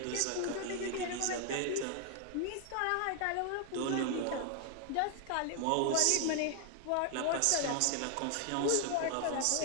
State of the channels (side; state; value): both; different; correlation 0.00